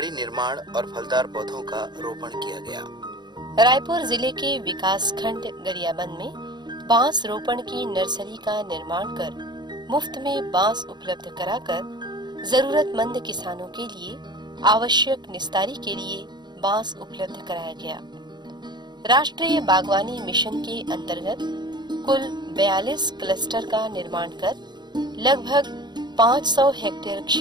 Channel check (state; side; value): late; left; 0.21 ms